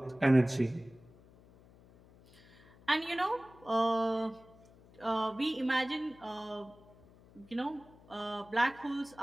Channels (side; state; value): left; noise; hum, 25 dB below the sound